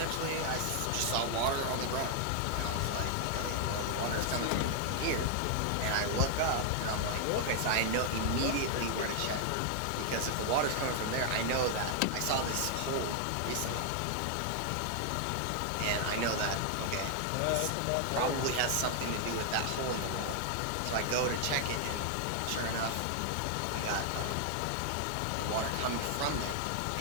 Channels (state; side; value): different; both; correlation 0.00